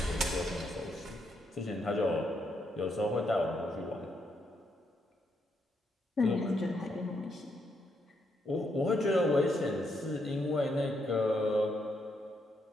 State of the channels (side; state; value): both; normal; correlation 0.77